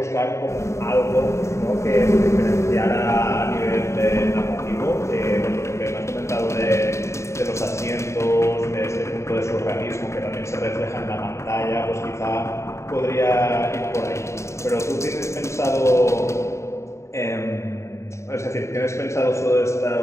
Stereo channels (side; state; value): right; late; 0.14 ms